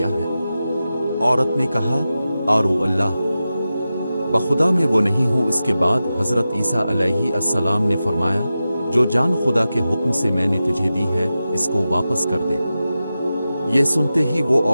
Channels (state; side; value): inverted; both; correlation -0.93